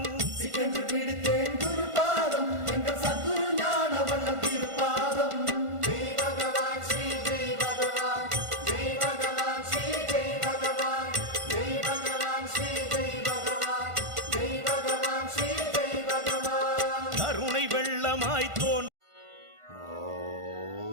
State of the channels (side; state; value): left; late; 1.5 ms